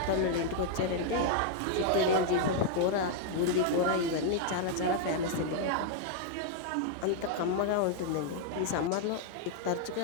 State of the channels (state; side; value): different; both; correlation 0.00